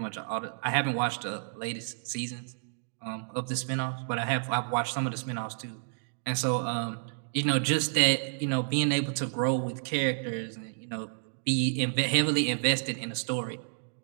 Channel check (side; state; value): left; silent; digital silence